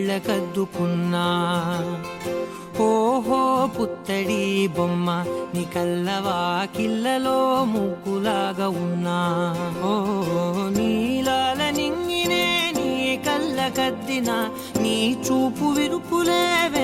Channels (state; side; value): identical; both; correlation 1.00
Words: ఓహో పుత్తడి బొమ్మ నీ కళ్ళవాకిళ్ళలో ముగ్గులాగా ఉన్నా. ఓ నీలాల నింగినే నీ కళ్ళకద్దిన నీ చూపు విరుపులే